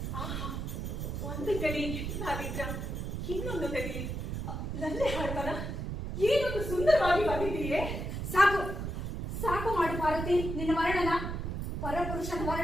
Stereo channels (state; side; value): noise; right; rumble, 4 dB below the sound